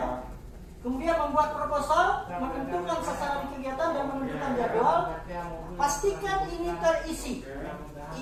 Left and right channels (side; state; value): both; identical; correlation 1.00